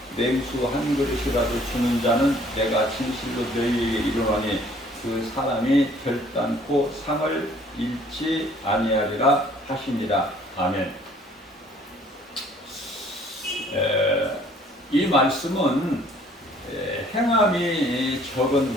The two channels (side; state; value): both; normal; correlation 0.57